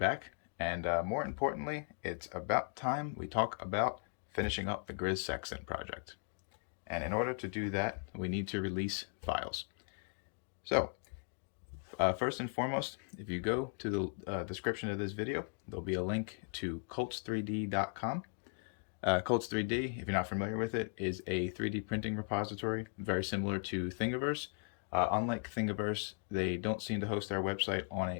And more importantly, it's about time we talk about finishing up the GRIZ Sextant project. And in order to do that, we need to release files. So, first and foremost, if you go to the description of this video, there'll be a link to colts3d.com. Colts3D, if you're not familiar with it, is a 3D printing repository, very similar to Thingiverse. Unlike Thingiverse, they don't seem to host their website on a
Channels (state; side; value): silent; right; 53 dB below the other